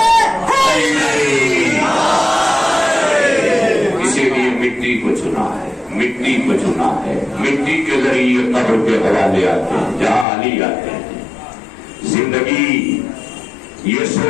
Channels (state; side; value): drops out; right; at 10.2 s